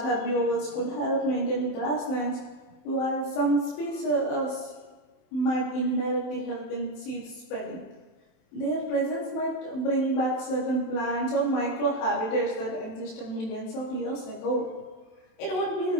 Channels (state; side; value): late; right; 27 ms